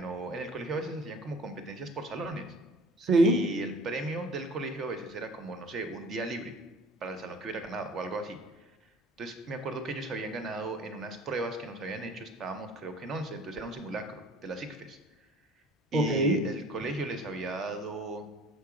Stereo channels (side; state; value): both; normal; correlation 0.48